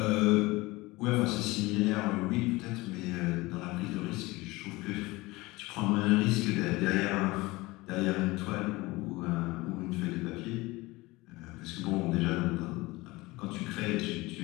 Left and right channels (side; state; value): right; quieter; 21.5 dB